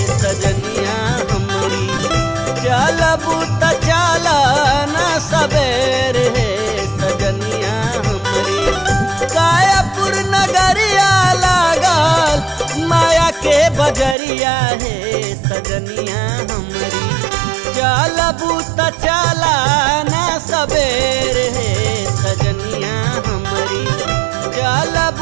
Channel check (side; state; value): left; drops out; at 14.2 s